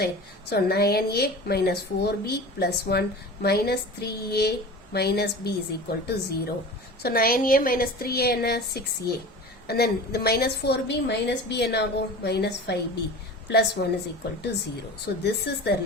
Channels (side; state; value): both; normal; correlation 0.35